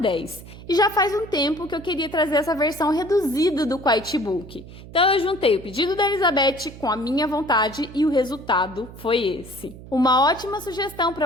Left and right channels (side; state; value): right; noise; hum, 16 dB below the sound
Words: E já faz um tempo que eu queria trazer essa versão reduzida do Quiet Book. Então eu juntei o pedido da Elizabeth com a minha vontade e o resultado foi esse. Uma ótima sugestão para